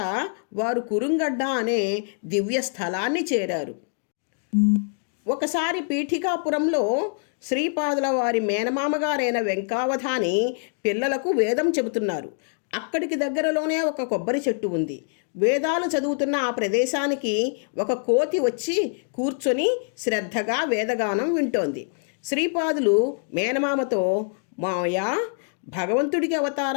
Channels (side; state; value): right; silent; 62 dB below the other